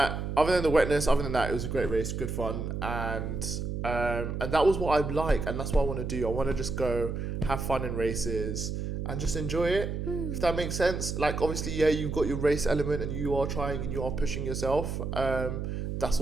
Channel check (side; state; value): right; noise; hum, 3 dB below the sound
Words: wetness, other than that, it was a great race, good fun, and that was what I like, and that's what I want to do. I want to just go have fun in races and just enjoy it, if that makes sense. Like, obviously, yeah, you've got your race element and you are trying and you are pushing yourself. That's